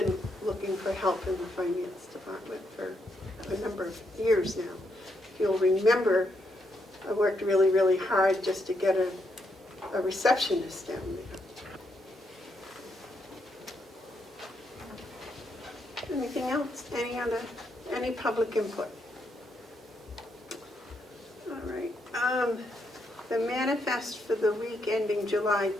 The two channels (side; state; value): both; normal; correlation 0.78